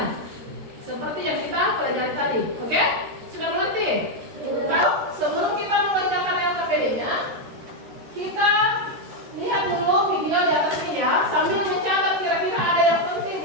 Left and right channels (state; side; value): late; left; 13 ms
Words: Seperti yang kita pelajari tadi. Oke? Sudah mengerti? Sebelum kita mengerjakan LKPD-nya, kita lihat dulu video di atas ini ya, sambil mencatat kira-kira ada yang